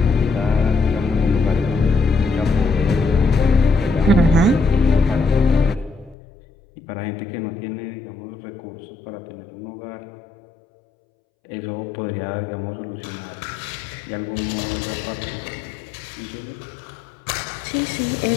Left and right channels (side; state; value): right; drops out; at 6.2 s